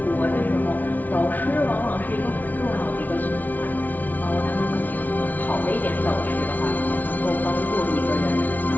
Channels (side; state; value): right; late; 0.079 ms